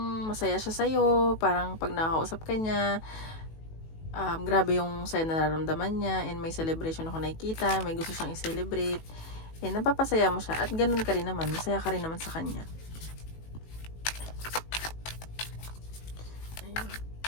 masaya siya sa'yo. Parang pag nakakausap ka niya, grabe yung saya na nararamdaman niya, and may celebration ako nakikita, may gusto siyang i-celebrate, and napapasaya mo siya, at ganun ka rin naman, masaya ka rin naman sa kanya. Ayan.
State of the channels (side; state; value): right; late; 18 ms